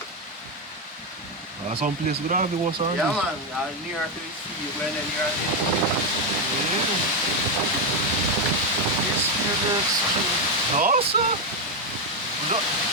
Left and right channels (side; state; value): both; normal; correlation 0.05